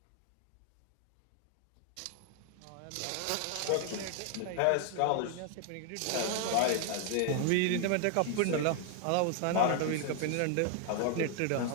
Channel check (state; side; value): different; both; correlation 0.00